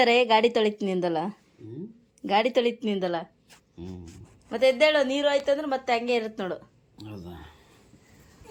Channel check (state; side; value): identical; both; correlation 1.00